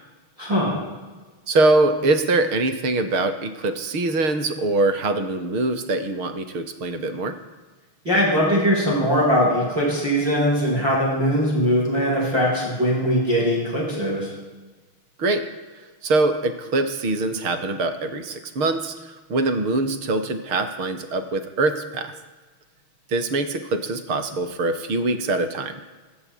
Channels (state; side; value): late; left; 6.5 ms